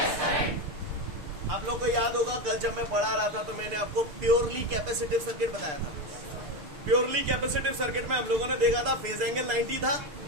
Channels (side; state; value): left; late; 6.7 ms